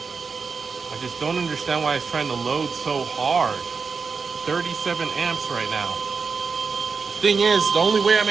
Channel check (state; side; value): quieter; left; 5.1 dB